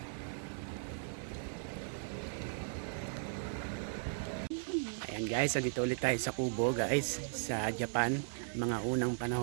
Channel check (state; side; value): silent; left; digital silence